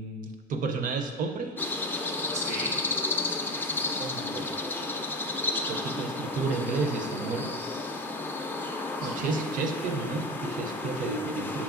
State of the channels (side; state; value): both; normal; correlation 0.25